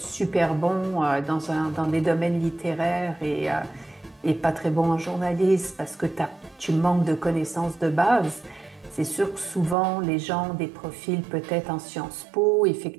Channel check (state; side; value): drops out; left; at 9.8 s